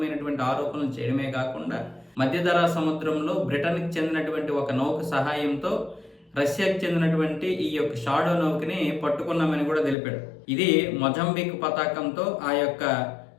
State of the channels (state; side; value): drops out; right; at 10.0 s